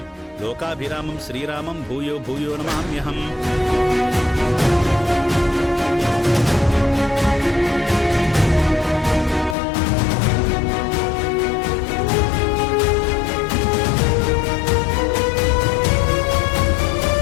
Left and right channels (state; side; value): drops out; right; at 9.6 s